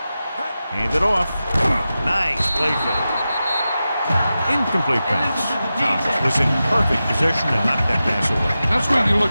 Hand it off. Nice play fake. Incomplete pass. Thomas was in perfect position and knocked that pass away. That's what you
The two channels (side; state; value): both; inverted; correlation -0.93